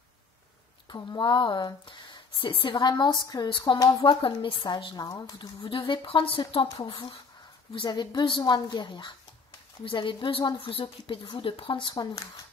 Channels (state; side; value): quieter; right; 4.9 dB